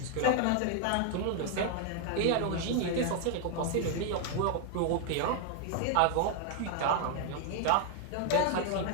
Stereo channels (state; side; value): different; both; correlation 0.00